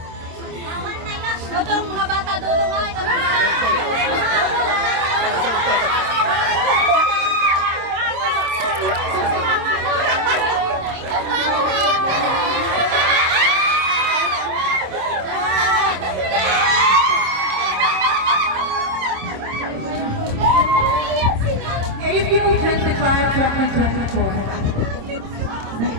Dodong, mga bata, dodong nga. Ito naman. April 25, 2024,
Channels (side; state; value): left; late; 26 ms